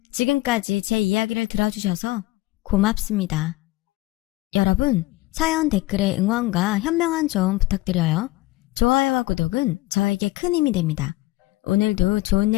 지금까지 제 이야기를 들어주셔서 고맙습니다. 여러분, 사연 댓글에 응원과 현명한 조언 부탁드려요. 좋아요와 구독은 저에게 큰 힘이 됩니다. 오늘도 좋은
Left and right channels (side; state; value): right; quieter; 19.5 dB